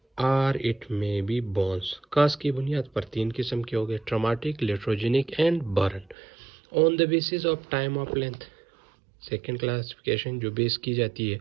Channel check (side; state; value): left; drops out; at 6.2 s